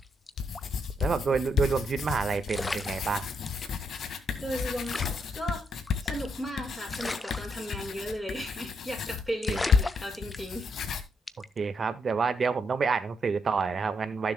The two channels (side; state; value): both; normal; correlation 0.77